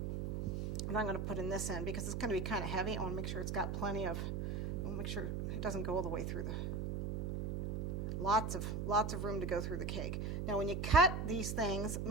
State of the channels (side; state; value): right; noise; hum, 2 dB below the sound